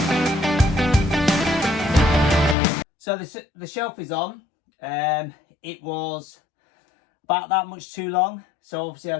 so the shelf is on. It was about that much too long. So obviously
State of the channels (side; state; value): right; drops out; at 2.6 s